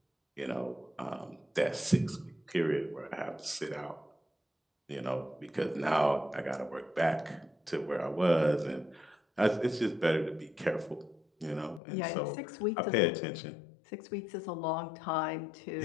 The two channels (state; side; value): drops out; right; at 11.8 s